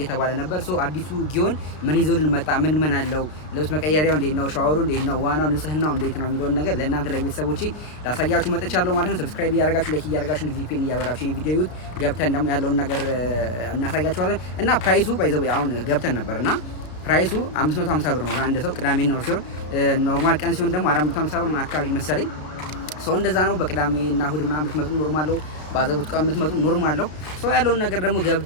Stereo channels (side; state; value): right; late; 33 ms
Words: ነበር። ሶ አዲሱ ጊዮን ምን ይዞልን መጣ? ምን አለው? ልብስ መቀየሪያው እንዴት ነው? ሻወሩ እንዴት ነው? ዋናው ንጽህናው እንዴት ነው የሚለውን ነገር ለእናንተ ለቤተሰቦቼ ላሳያችሁ መጥቻለሁ ማለት ነው። ሰብስክራይብ እያደረጋችሁ ላይክ እያደረጋችሁ ቪፒኤን እያበራችሁ ይሄ ቪዲዮ ይዩት። ገብተን ደግሞ ያለውን ነገር እናሳያችኋለን እና ፕራይሱ ባይዘው አሁን ገብተን ነበርና ፕራይሱ 550 ብር ነው ለአንድ ሰው ቅዳሜና እሁድ ሲሆን ኖርማል ቀን ሲሆን ደግሞ 450 ብር ነው አካባቢ መሰለኝ። ሰው እንደዛ ነው። በቅዳሜና እሁድ ምናምን ብትመጡ ኖርማል ነው። ባዘቡት ቀን ብትመጡ ኖርማል ነው። ሰው ያለውን ነገር ደግሞ